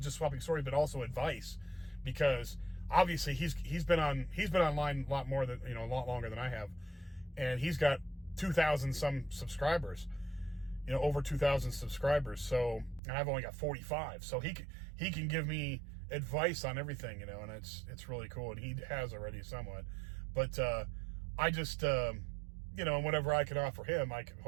just swapping stories, but also advice, because obviously he's been online a lot more than, you know, a lot longer than I have, and he's got 2,000 some subscribers, you know, over 2,000 subscribers. So, and I've only got 45. So he can give me advice on everything, you know, and it's really cool. And he has already somewhat, but I just you know, whatever I can offer him,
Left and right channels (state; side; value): drops out; left; at 13.0 s